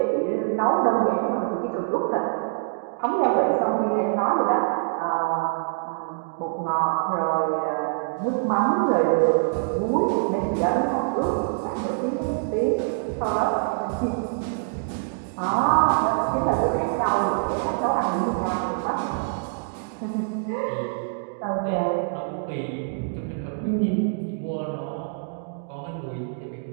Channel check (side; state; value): left; silent; digital silence